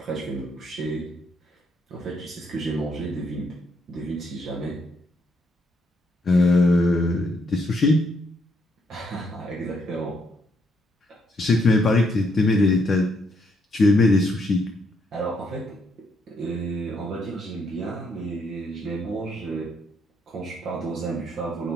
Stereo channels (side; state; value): both; normal; correlation 0.74